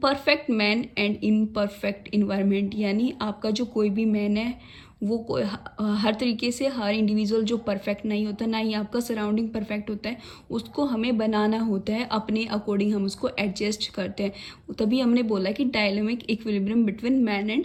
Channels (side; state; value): both; identical; correlation 1.00